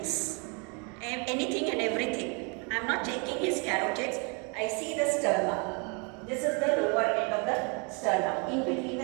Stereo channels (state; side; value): quieter; left; 34.0 dB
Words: Anything and everything. I'm not taking his carotids. I see the sternum. This is the lower end of the sternum, in between